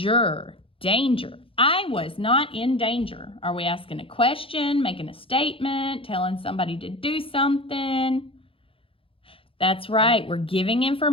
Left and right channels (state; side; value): late; right; 0.26 ms